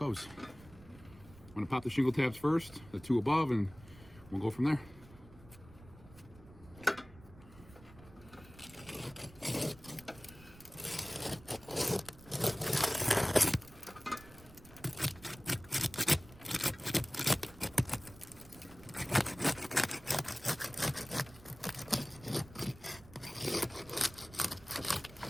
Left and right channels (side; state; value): right; noise; rumble, 20 dB below the sound